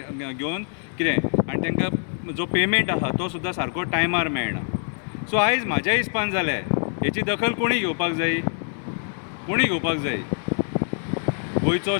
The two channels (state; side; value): silent; right; 62 dB below the other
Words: घेवन कितें आनी तांकां जो पेमेंट आहा तो सुद्दां सारको टायमार मेळना. सो आयज म्हाज्या हिसपान जालें हेची दखल कोणी घेवपाक जाय, कोणी घेवपाक जाय. गोंयचो